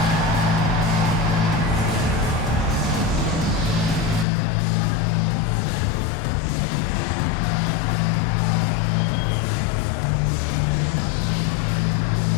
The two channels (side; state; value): right; drops out; at 4.2 s